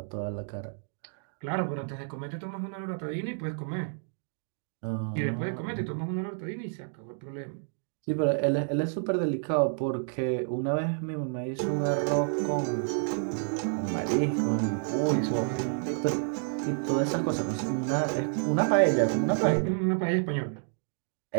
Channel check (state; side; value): silent; left; digital silence